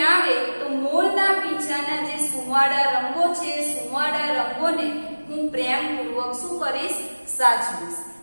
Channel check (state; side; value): inverted; both; correlation -1.00